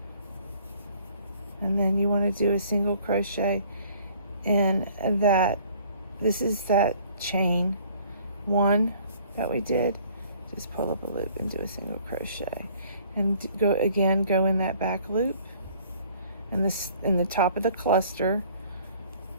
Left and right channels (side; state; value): both; inverted; correlation -0.56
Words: and then you want to do a single crochet And that this is that chain 1 that we did. Just pull up a loop and do a single crochet, and go in that back loop, and this in the top of the cluster,